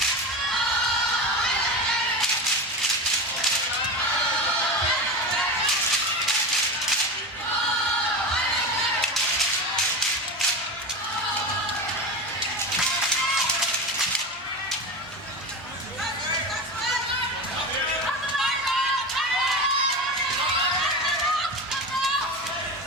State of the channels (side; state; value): both; normal; correlation 0.23